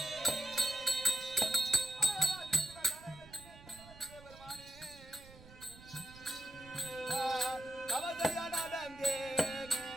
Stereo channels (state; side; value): noise; right; rumble, 19 dB below the sound